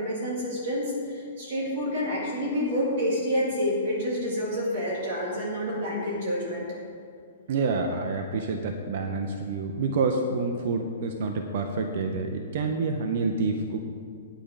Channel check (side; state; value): both; inverted; correlation -0.43